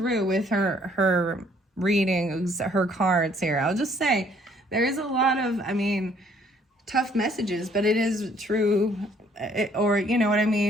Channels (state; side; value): normal; both; correlation 0.63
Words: with her readings, her cards here. I'll just say there is a lot of, I mean, tough messages, but it is true, or you know what I